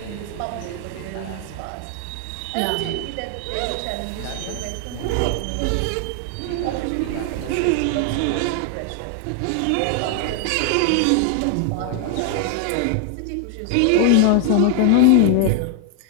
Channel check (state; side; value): different; both; correlation 0.00